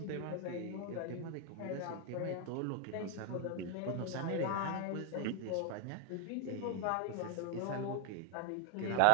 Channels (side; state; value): both; different; correlation 0.01